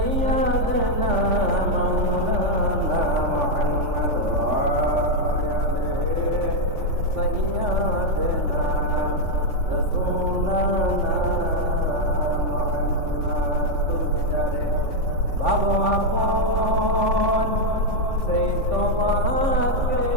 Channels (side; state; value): left; late; 3.5 ms